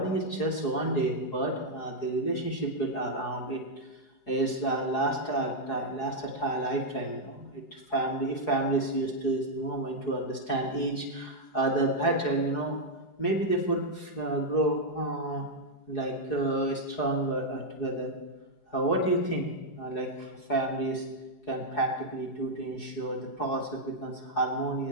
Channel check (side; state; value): right; late; 4.8 ms